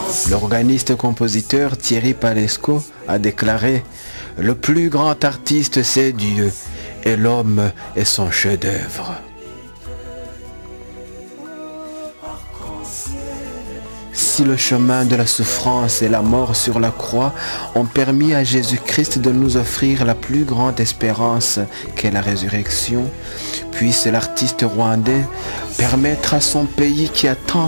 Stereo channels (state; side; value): inverted; both; correlation -1.00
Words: L'organiste-compositeur Thierry Palesco a déclaré « Le plus grand artiste, c'est Dieu, et l'homme est son chef-d'œuvre. » Si le chemin de la souffrance et la mort sur la croix ont permis à Jésus-Christ de nous offrir la plus grande espérance qu'est la résurrection, puisse l'artiste rwandais permettre à son pays qui a